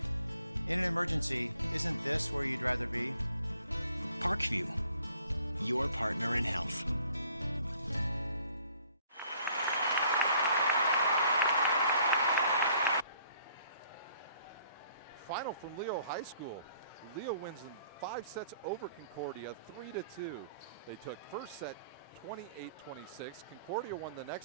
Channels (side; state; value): both; inverted; correlation -0.61